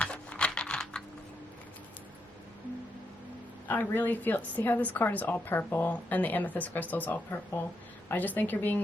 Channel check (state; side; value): normal; both; correlation 0.81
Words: I really feel, see how this card is all purple and the amethyst crystal is all purple? I just think you're